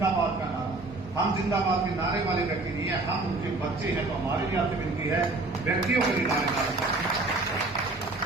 का नारा। हम जिंदाबाद के नारे वाले व्यक्ति नहीं है, हम उनके बच्चे हैं। तो हमारे लिए आपसे विनती है, व्यक्तियों के लिए नारे डालें।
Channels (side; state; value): left; quieter; 3.2 dB